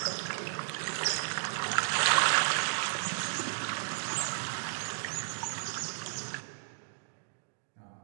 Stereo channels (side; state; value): left; silent; digital silence